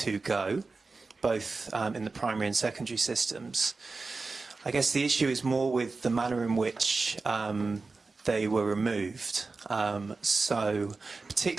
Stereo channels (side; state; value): left; quieter; 3.9 dB